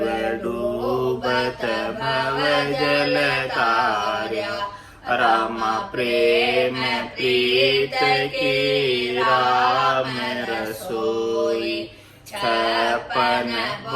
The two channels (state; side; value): identical; both; correlation 1.00